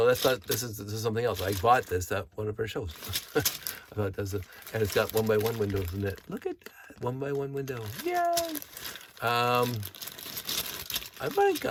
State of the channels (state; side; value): identical; both; correlation 1.00